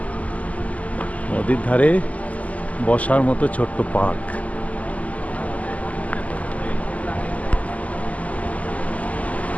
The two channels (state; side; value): late; right; 0.072 ms